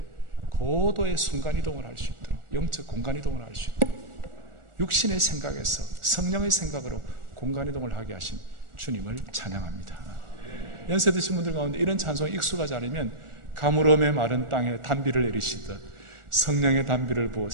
고도의 순간이동을 할 수 있도록, 영적 공간이동을 할 수 있도록 육신의 생각에서 성령의 생각으로 공간이동을 하게 하신 주님을 찬양합니다. 연세 드신 분들 가운데 이런 찬송에 익숙하지 않으면 가물음의 마른 땅에 단비를 내리시듯 성령의 단비를 부어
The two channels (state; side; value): late; left; 1.4 ms